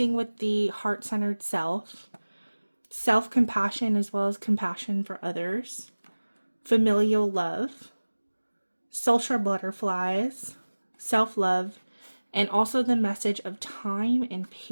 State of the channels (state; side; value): inverted; both; correlation -1.00